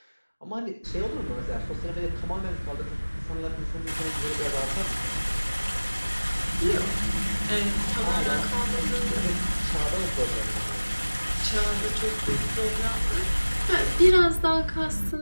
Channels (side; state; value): both; inverted; correlation -1.00